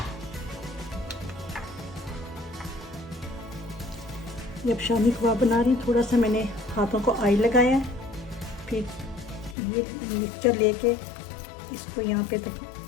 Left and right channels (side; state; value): right; drops out; at 9.6 s